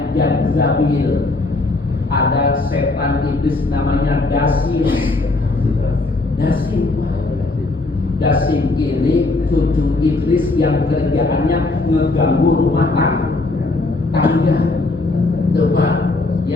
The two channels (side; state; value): right; quieter; 3.2 dB